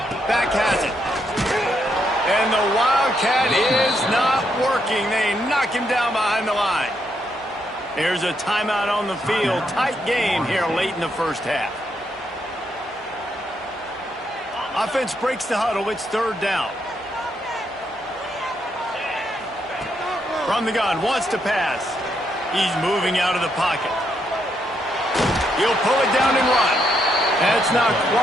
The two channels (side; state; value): both; normal; correlation 0.77